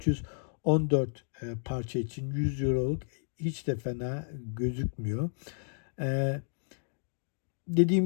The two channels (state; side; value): silent; right; digital silence